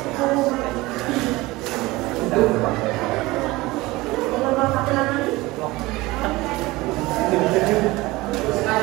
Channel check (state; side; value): quieter; left; 20.5 dB